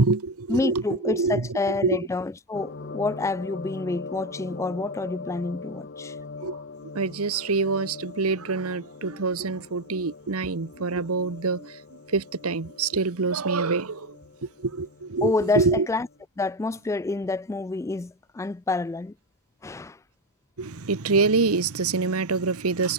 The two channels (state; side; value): normal; both; correlation 0.11